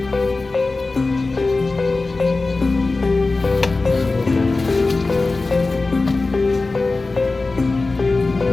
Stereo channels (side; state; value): right; quieter; 3.5 dB